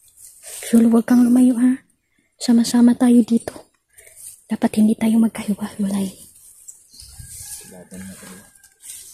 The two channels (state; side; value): identical; both; correlation 1.00